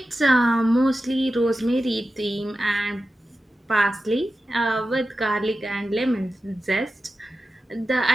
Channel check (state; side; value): normal; both; correlation 0.93